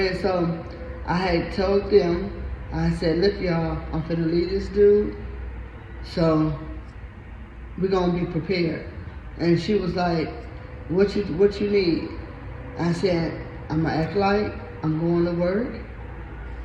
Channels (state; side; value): identical; both; correlation 1.00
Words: so I had told them, I said, look y'all, I'm finna leave this dude, so we're gonna be prepared. And she was like, what you need? I said, I'm gonna act like I'm going to work.